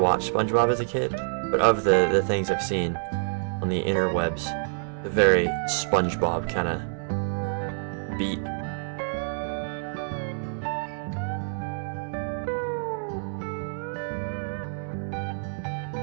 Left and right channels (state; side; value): silent; left; 60 dB below the other